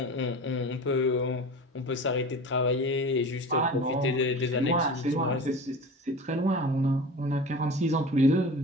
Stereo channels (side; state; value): both; normal; correlation 0.35